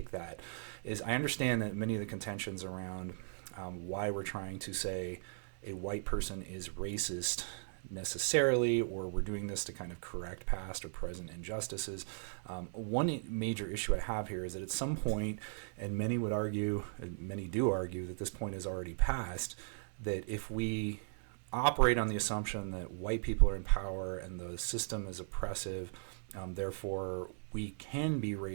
that is I understand that many of the contentions around why we're trying to say a white person is racist necessarily, or we're doing this to kind of correct past or present injustices. One major issue I have here is that at some point, and many would argue, and many do argue, that this point is already past, that if we operate on the assumption that white people are in power and the system is oppressive, therefore we can be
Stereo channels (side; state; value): left; silent; digital silence